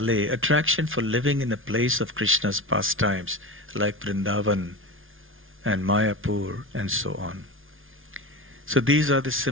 Attraction for living in the place of Krishna's pastimes, like Vrindavan and Mayapur and so on. So these are the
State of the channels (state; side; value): late; left; 0.58 ms